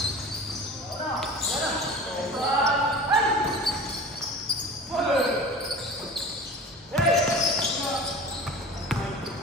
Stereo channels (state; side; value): normal; both; correlation 0.37